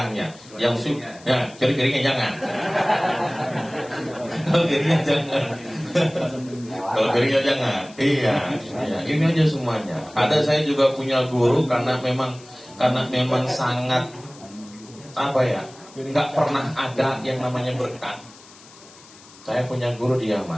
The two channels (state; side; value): noise; left; hiss, 22 dB below the sound